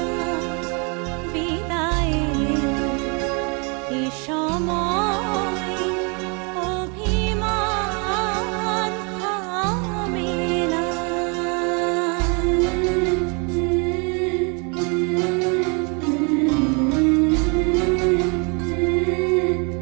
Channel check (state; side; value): quieter; left; 33.7 dB